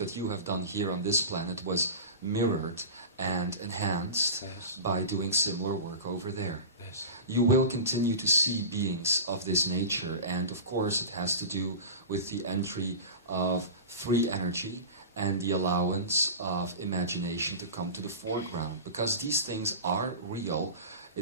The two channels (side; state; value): both; inverted; correlation -0.30